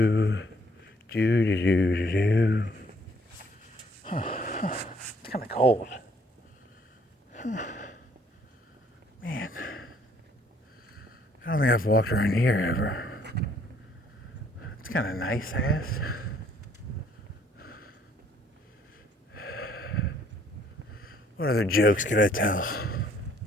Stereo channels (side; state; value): both; normal; correlation 0.63